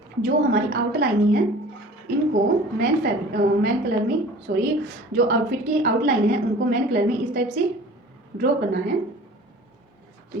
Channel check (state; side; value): normal; both; correlation 0.44